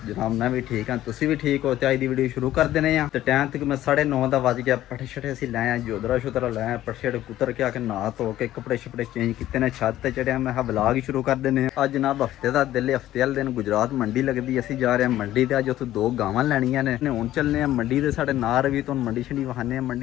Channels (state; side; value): quieter; right; 13.7 dB